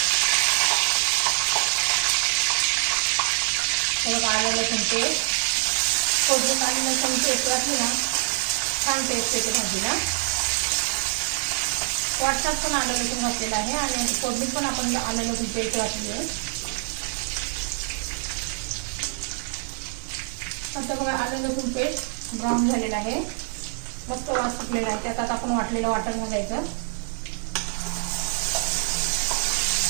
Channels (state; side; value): silent; left; 62 dB below the other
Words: आलं लसूण पेस्ट, फोडणीत आलं लसूण पेस्ट घातली ना छान टेस्ट येते भाजीला। वाटतात पण आलं लसूण घातलेलं आहे आणि फोडणीत पण आपण आलं लसूण पेस्ट घातली आहे। आता बघा आलं लसूण पेस्ट ब्राऊन झालेलं आहे, मस्त वास सुटलेला आहे। त्यात आता आपण वाटलेलं वाटण घालायचं।